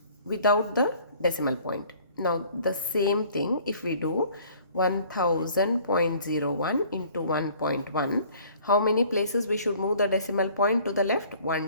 without the decimal point. Now the same thing, if we do 1000.01 into 1.1, how many places we should move the decimal point to the left?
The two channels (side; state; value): both; inverted; correlation -0.54